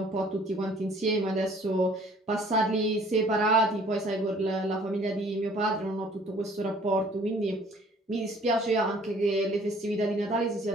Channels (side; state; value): both; normal; correlation 0.55